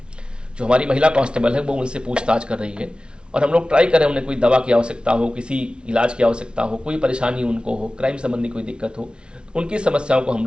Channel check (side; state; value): left; late; 0.056 ms